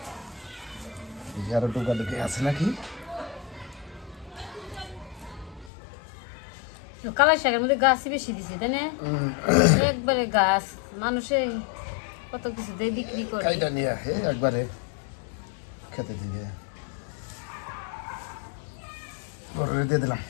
আরো টোকা লেগে আছে নাকি? কালাই শাকের মধ্যে গাছই বেশি দিছে, তাই না? একবারে গাছ, মানুষে কত কিছু দিয়ে বিক্রি করে। কাইটা নিয়ে একবারে খেতে দিয়ে দিয়ে দিলাম।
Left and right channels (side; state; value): right; drops out; at 5.7 s